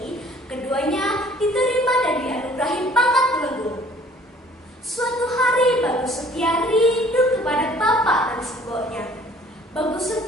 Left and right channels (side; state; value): both; normal; correlation 0.54